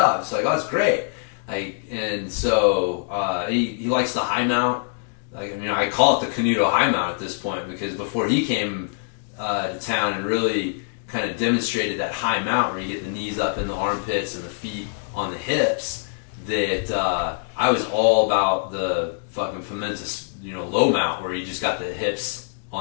It's like, oh, that's great. Like, and so he likes the high mount. Like, I call it the Canuto high mount at this point because before he came to town and really kind of demonstrated that high mount where you get the knees up in the armpits and the feet on the hips, that I was all about the fucking Pimenta, low mount where you just got the hips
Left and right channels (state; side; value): silent; right; digital silence